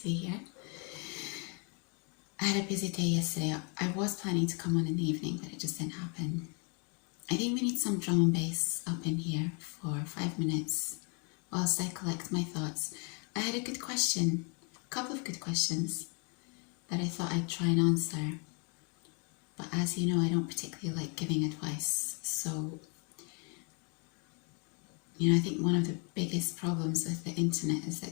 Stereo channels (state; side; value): quieter; right; 34.6 dB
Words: be here. I had a busy day yesterday. I was planning to come on in the evening, but it just didn't happen. I think we need some drum and bass up in here for 5 minutes whilst I collect my thoughts. I had a good question, a couple of good questions that I thought I'd try and answer. But as you know, I don't particularly like giving advice. So, I think one of the biggest problems with the internet is